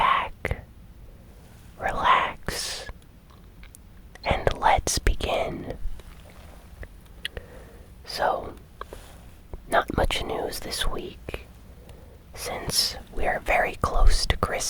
relax, and let's begin. So, not much news this week, since we are very close to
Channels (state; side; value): identical; both; correlation 1.00